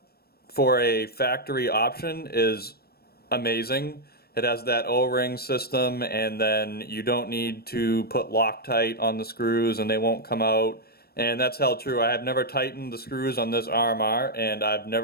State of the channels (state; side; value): late; right; 0.46 ms